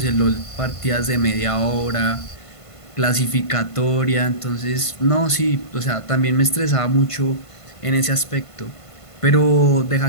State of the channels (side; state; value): right; late; 1.5 ms